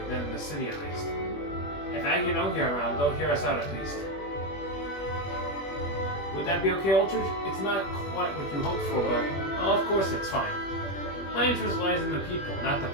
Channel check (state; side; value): late; right; 21 ms